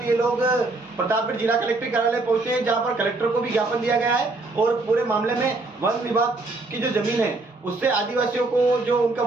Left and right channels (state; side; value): quieter; left; 3.2 dB